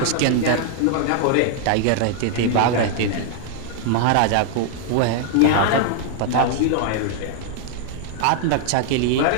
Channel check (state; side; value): different; both; correlation 0.00